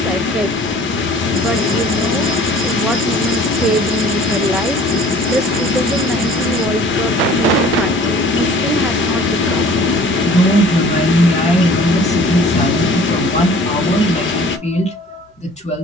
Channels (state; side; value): normal; both; correlation 0.49